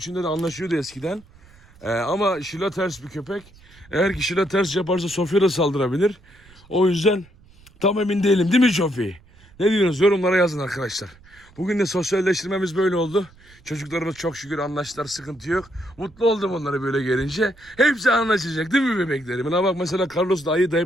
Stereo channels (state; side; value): noise; right; rumble, 26 dB below the sound